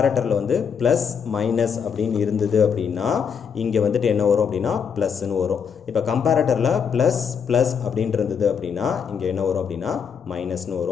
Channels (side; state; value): right; quieter; 6.8 dB